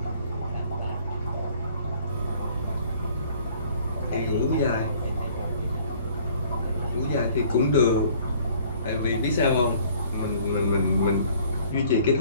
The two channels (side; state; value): both; inverted; correlation -0.56